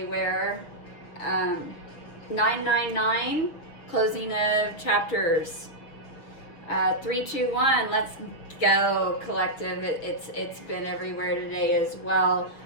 999, closing of chapters. 321, let's go collective. It's been everywhere today as well.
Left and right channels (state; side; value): late; right; 6.5 ms